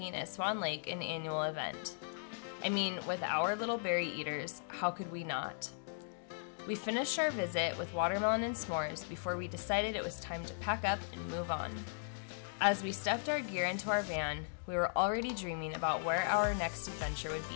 at Swan Lake an annual event. I mean, with our little berry eaters, how could we not? We finished our visit with watermelon and s'mores before we decided it was time to pack up and move on. As we stuffed our gear into our van, we were already dreaming about where our next adventure would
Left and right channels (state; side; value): silent; right; digital silence